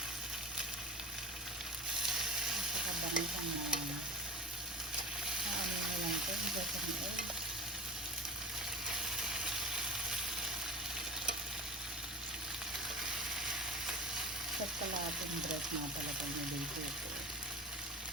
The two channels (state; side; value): normal; both; correlation 0.32